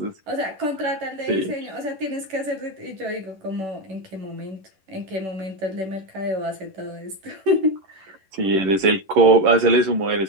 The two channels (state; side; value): late; left; 11 ms